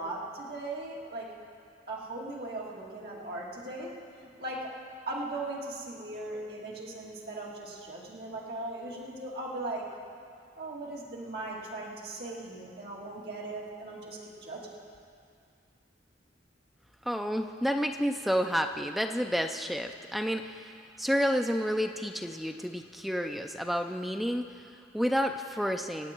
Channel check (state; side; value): normal; both; correlation 0.78